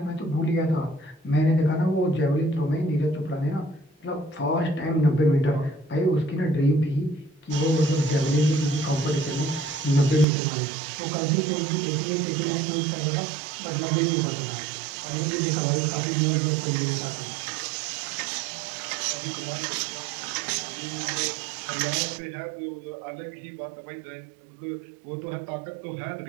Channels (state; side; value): drops out; left; at 10.2 s